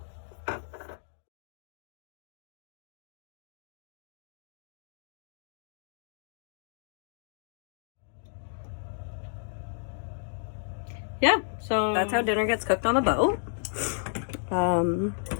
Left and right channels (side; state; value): right; silent; digital silence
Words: Yeah, so that's how dinner gets cooked on the boat. And